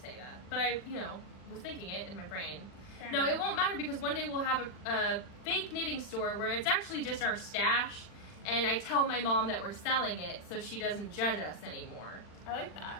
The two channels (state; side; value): late; right; 40 ms